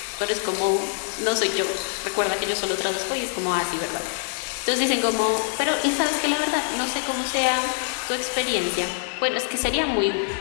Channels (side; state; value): right; silent; digital silence